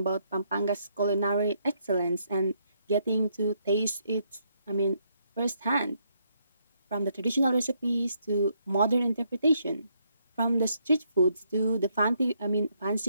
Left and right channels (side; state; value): both; inverted; correlation -0.74